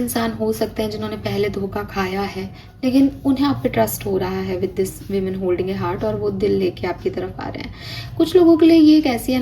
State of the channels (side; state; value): both; identical; correlation 1.00